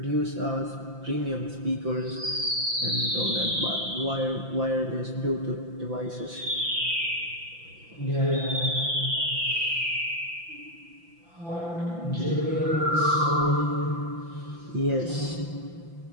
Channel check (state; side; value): late; left; 5.9 ms